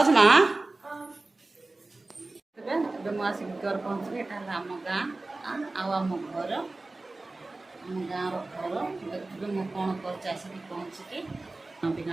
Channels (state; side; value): quieter; left; 3.1 dB